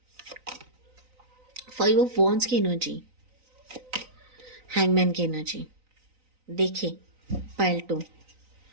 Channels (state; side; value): late; left; 3.9 ms